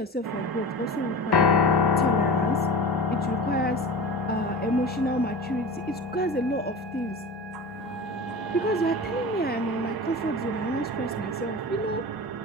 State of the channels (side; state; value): both; normal; correlation 0.32